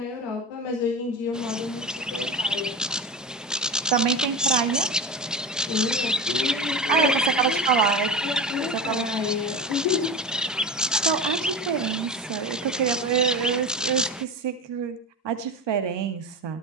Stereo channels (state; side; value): normal; both; correlation 0.26